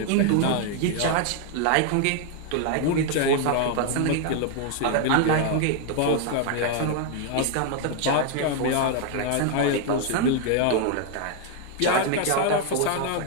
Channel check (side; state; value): both; different; correlation 0.00